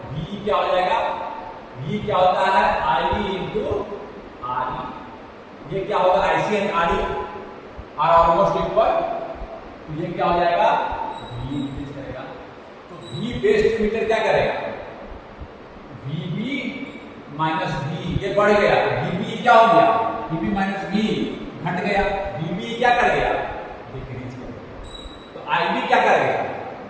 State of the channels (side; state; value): both; identical; correlation 1.00